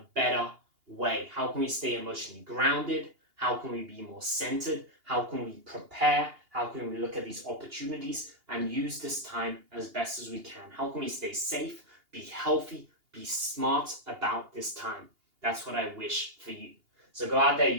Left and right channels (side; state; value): left; late; 2.8 ms